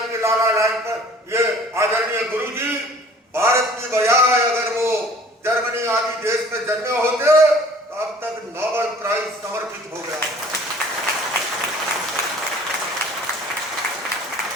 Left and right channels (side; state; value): both; normal; correlation 0.51